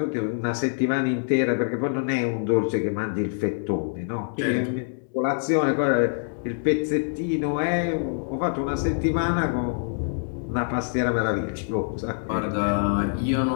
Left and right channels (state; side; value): silent; right; digital silence